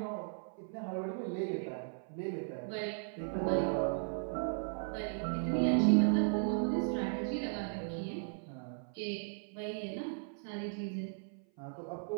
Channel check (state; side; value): silent; left; 53 dB below the other